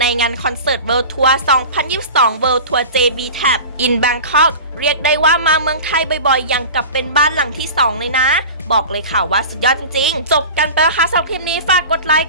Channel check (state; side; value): inverted; both; correlation -0.34